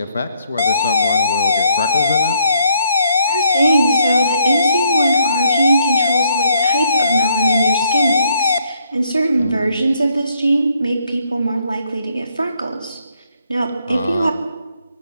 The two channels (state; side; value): inverted; both; correlation -0.71